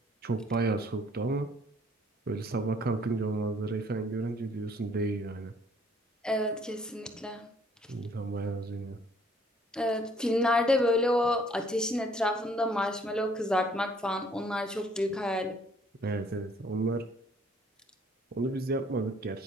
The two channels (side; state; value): both; normal; correlation 0.61